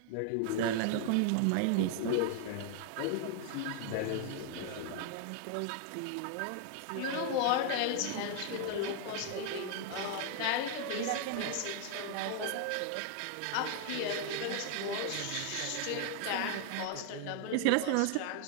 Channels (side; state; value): both; different; correlation 0.00